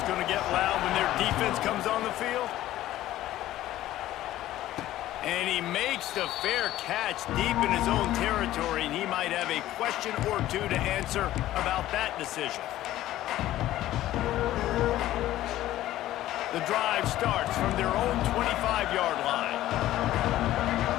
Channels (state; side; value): quieter; right; 14.4 dB